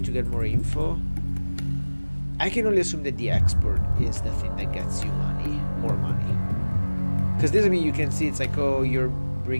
to get more info. I can only assume that the export is the thing that gets you money, more money. Because this, I mean, you can see it's like, oh, you're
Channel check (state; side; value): inverted; both; correlation -1.00